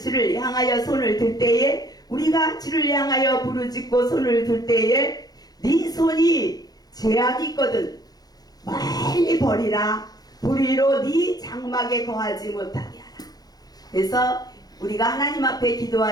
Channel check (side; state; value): right; late; 0.19 ms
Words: 향하여 손을 들 때에, 우리가 주를 향하여 부르짖고 손을 들 때에 네 손이 죄악이 있거든 멀리 버리라. 불의로 네 장막에 거하지 못하게 하라. 그래서 우리가 하나님 앞에